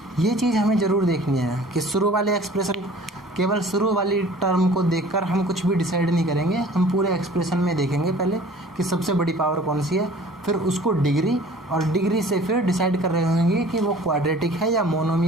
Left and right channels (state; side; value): normal; both; correlation 0.48